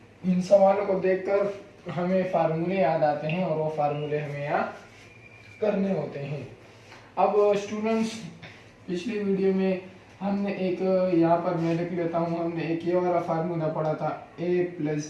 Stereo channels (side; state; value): both; identical; correlation 1.00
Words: इन सवालों को देखकर हमें फार्मूले याद आते हैं और वो फार्मूले हमें याद करने होते हैं। अब स्टूडेंट्स, पिछली वीडियो में हमने एक, यहाँ पर मैं लिख लेता हूँ, हमने एक ये वाला फार्मूला पढ़ा था, a प्लस